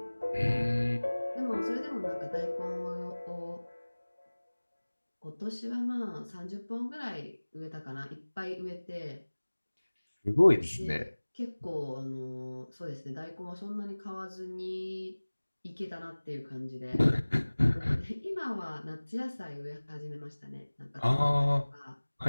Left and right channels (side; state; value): both; inverted; correlation -1.00